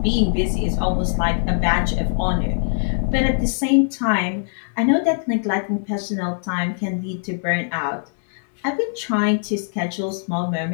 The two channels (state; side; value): silent; right; digital silence